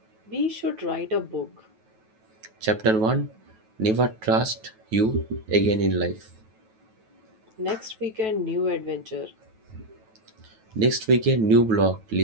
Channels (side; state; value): left; late; 9.2 ms